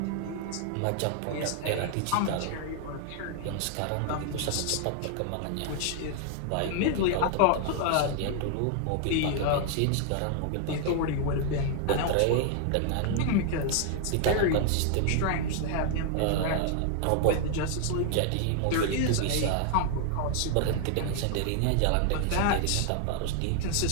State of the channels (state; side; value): different; both; correlation 0.00